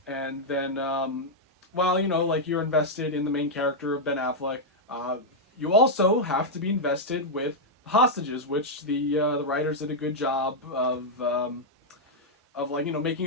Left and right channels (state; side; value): normal; both; correlation -0.03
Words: and then while like you're invested in the main character of Ben Affleck, you also have to be invested with hostages, which the writers did a good job of like